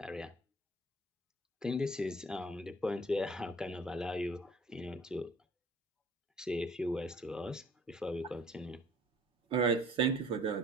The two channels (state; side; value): normal; both; correlation 0.53